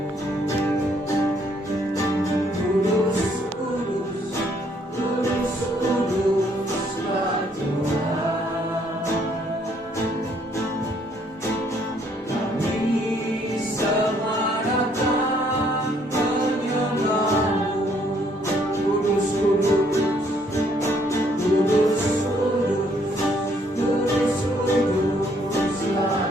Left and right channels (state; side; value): normal; both; correlation 0.67